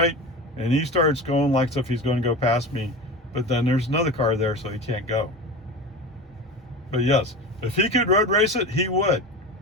and he starts going like as if he's going to go past me, but then there's another car there, so he can't go. But yes, if he could road race it, he would.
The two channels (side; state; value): both; normal; correlation 0.29